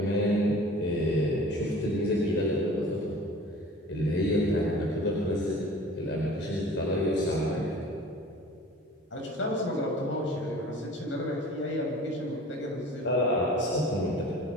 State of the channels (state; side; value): normal; both; correlation 0.44